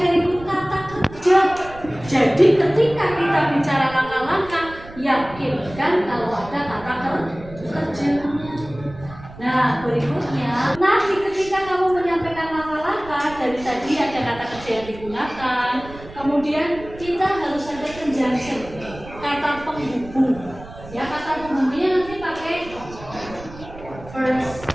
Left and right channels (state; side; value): noise; right; rumble, 16 dB below the sound